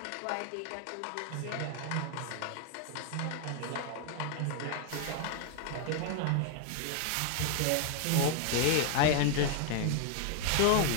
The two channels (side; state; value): both; different; correlation 0.00